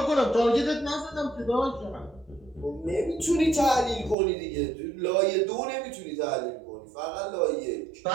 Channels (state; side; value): drops out; left; at 4.2 s